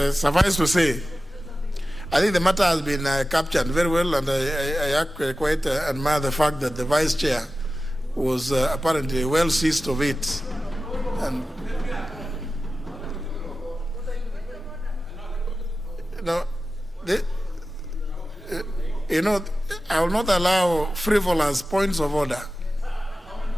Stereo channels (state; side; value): normal; both; correlation 0.94